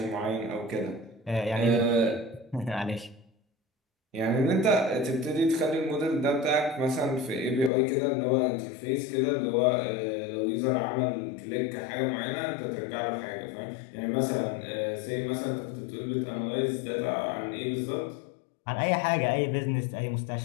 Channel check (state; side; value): drops out; right; at 7.7 s